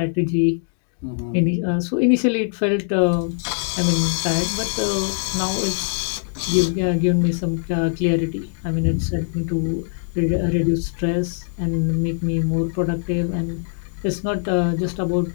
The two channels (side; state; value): right; silent; digital silence